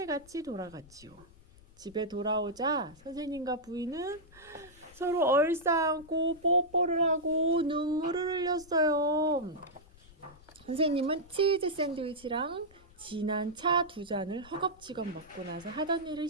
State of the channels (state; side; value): noise; left; rumble, 24 dB below the sound